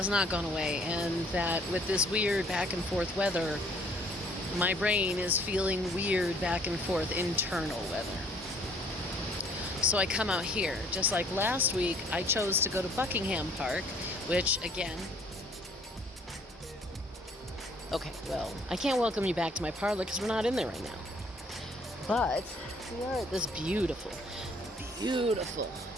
not gone away, and that with this weird back and forth weather, my brain is feeling weird back and forth internal weather. So I come out here. Just like last week, I chose to go to Buckingham Park, which again, okay, well, I can't welcome you back to my parlor because we're not in there right now. But we are at this beautiful, beautiful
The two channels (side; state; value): both; normal; correlation 0.59